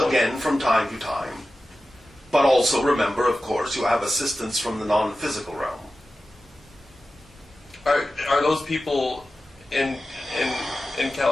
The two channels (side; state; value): both; normal; correlation 0.94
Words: from time to time. But also remember, of course, you have assistance from the non-physical realm. Are those people in